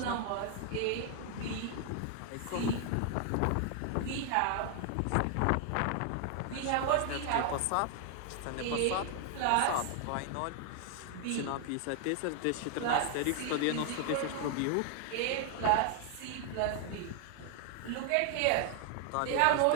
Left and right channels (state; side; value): different; both; correlation 0.00